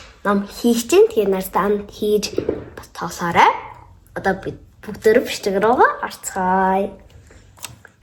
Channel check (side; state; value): both; identical; correlation 1.00